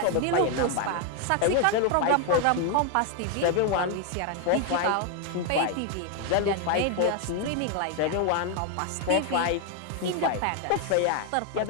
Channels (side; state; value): both; different; correlation 0.01